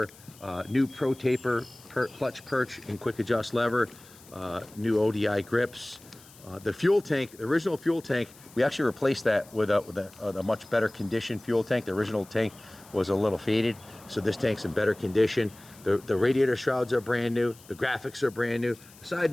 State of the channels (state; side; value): noise; left; hiss, 23 dB below the sound